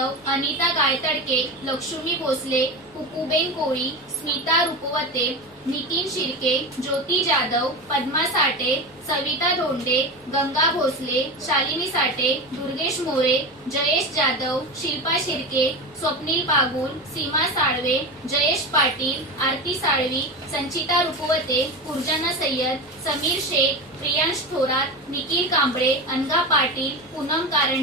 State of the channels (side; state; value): both; normal; correlation 0.23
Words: अनिता गायतडके, लक्ष्मी भोसले, कुकुबेन कोळी, स्मिता रुपवते, नितीन शिर्के, ज्योती जाधव, पद्मा साठे, सविता धोंडे, गंगा भोसले, शालिनी साठे, दुर्गेश मोरे, जयेश जाधव, शिल्पा शिर्के, स्वप्नील पागुल, सीमा साळवे, जयेश पाटील, आरती साळवी, संचिता रुपवते, कुर्जना सय्यद, समीर शेख, प्रियांश थोरात, निखिल कांबळे, अनघा पाटील, पूनम